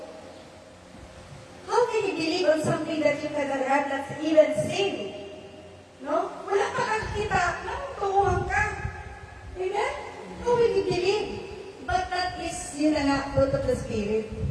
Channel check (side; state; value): both; identical; correlation 1.00